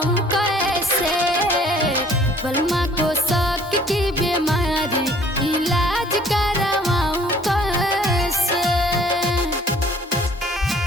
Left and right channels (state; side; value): normal; both; correlation 0.56